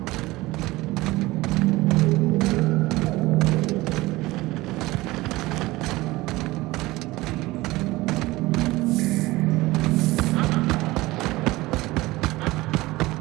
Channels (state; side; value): quieter; left; 19.6 dB